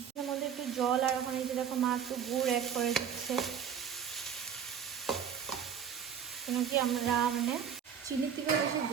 এর মধ্যে একটু জল, আর ওখানে যে দেখো মা একটু গুড় অ্যাড করে দিচ্ছে, কেন কি আমরা মানে চিনির থেকে বেশি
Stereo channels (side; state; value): left; quieter; 8.0 dB